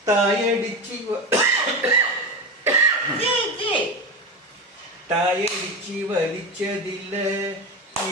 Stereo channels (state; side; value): normal; both; correlation 0.21